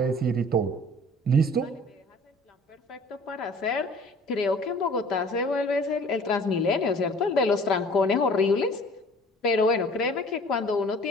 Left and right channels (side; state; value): both; normal; correlation 0.49